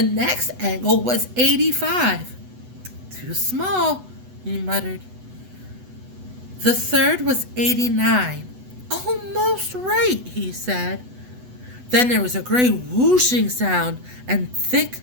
next angle was 85. Too small, he muttered. The third was 89. Almost right, he said. Then there was a great whooshing sound, and thick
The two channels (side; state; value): left; late; 8.0 ms